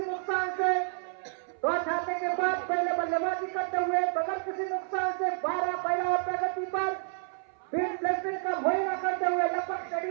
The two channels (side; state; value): left; silent; 58 dB below the other